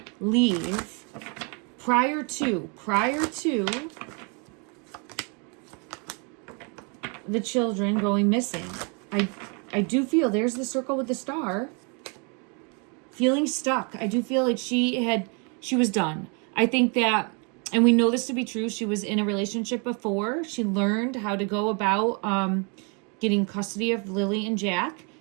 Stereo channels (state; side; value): quieter; left; 35.4 dB